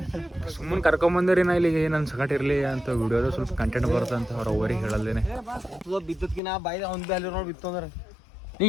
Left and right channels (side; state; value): right; drops out; at 6.4 s